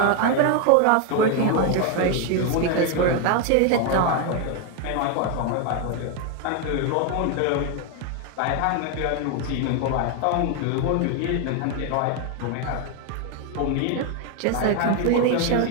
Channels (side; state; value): both; different; correlation 0.01